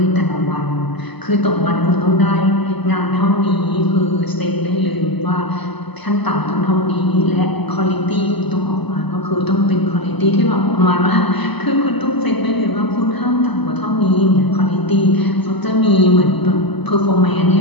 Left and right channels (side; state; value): right; late; 0.99 ms